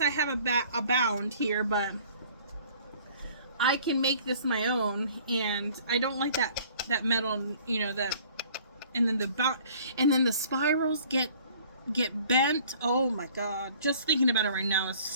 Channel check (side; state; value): both; inverted; correlation -0.53